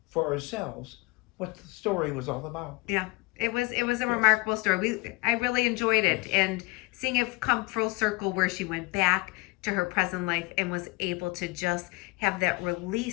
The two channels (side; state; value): right; quieter; 26.2 dB